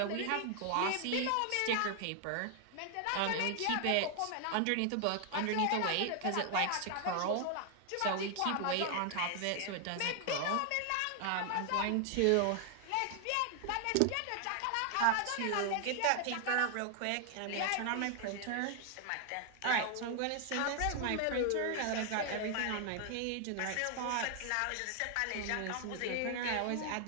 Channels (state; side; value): different; both; correlation 0.00